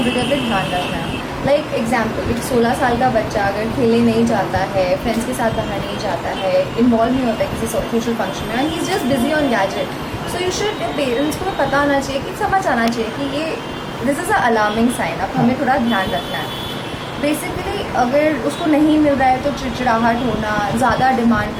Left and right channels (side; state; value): both; identical; correlation 1.00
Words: पे ध्यान रखना है। लाइक एग्जाम्पल, एक 16 साल का बच्चा अगर खेलने नहीं जाता है, फ्रेंड्स के साथ बाहर नहीं जाता है, इन्वॉल्व नहीं होता है किसी सोशल फंक्शन में, and he is just busy on gadget, so you should, parents को पता आना चाहिए कि समझ आना चाहिए कि ये this is a alarming sign, अब हमें थोड़ा ध्यान रखना है। बेसिकली अगर उसको नहीं मिल रहा है तो चिड़चिड़ाहट होना, ज़्यादा डिमांड